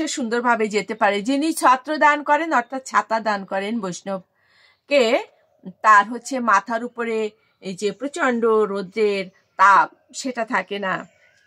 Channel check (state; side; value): identical; both; correlation 1.00